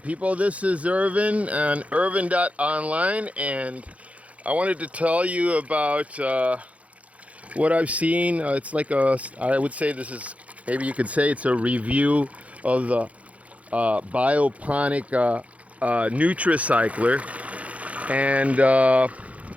this is Irvin on Irvin.online, and I wanted to tell you about what I've seen. I would say this is, maybe you could say it's a review of the bioponic Nutricycler, and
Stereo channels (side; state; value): left; late; 0.066 ms